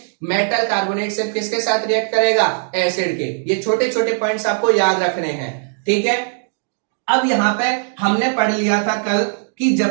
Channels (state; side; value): silent; left; digital silence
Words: मेटल कार्बोनेट सिर्फ किसके साथ रिएक्ट करेगा, एसिड के। ये छोटे छोटे पॉइंट्स आपको याद रखने हैं, ठीक है। अब यहां पे हमने पढ़ लिया था कल कि